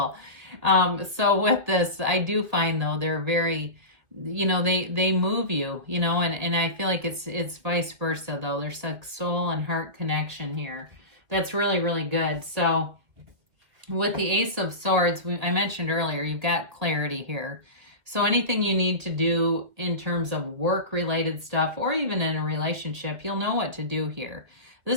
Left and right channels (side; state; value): left; late; 2.0 ms